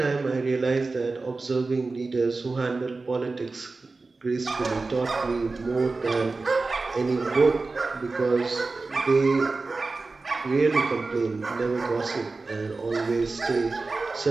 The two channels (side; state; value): left; quieter; 3.7 dB